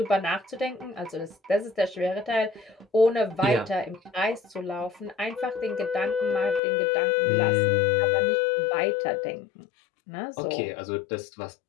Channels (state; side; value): drops out; right; at 6.6 s